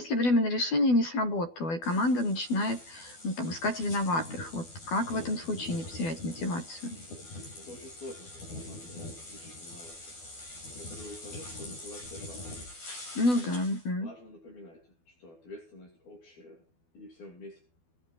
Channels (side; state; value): right; late; 12 ms